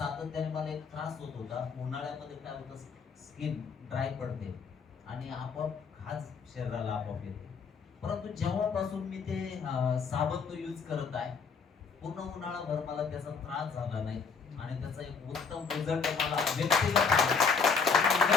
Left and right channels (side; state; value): right; quieter; 5.4 dB